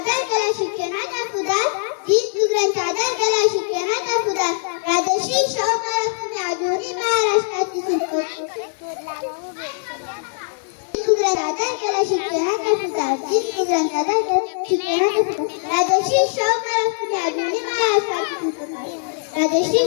करा शिक्षणाचा सुधार, दीनदुबळ्यांचा आदर करा शिक्षणाचा सुधार. राजश्री शाहू महाराज तुम्ही आधुनिक महाराष्ट्राची दीनदुबळ्यांचा आदर करा शिक्षणाचा सुधार, दीनदुबळ्यांचा आदर करा शिक्षणाचा सुधार. राजश्री शाहू महाराज तुम्ही आधुनिक महाराष्ट्राची शिल्पकार, राजश्री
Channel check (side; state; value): right; silent; 64 dB below the other